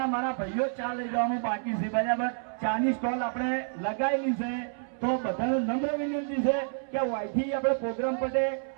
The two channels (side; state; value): left; silent; 59 dB below the other